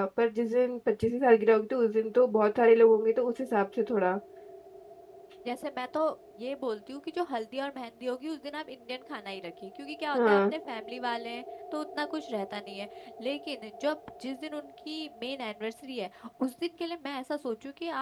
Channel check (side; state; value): both; identical; correlation 1.00